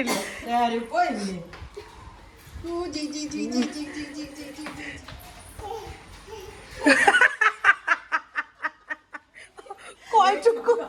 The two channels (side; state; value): both; identical; correlation 1.00